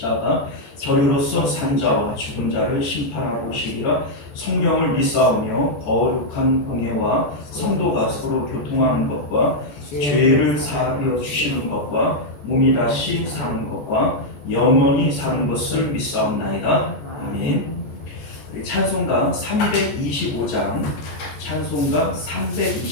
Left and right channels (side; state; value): right; late; 14 ms